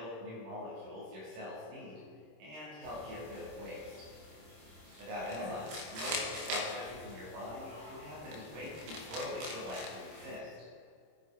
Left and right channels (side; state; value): left; late; 26 ms